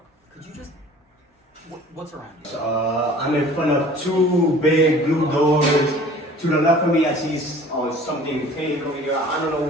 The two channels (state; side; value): normal; both; correlation 0.47